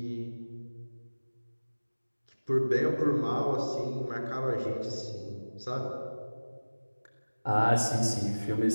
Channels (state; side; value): inverted; both; correlation -1.00